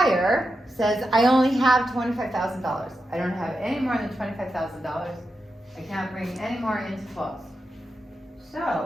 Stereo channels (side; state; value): both; normal; correlation 0.88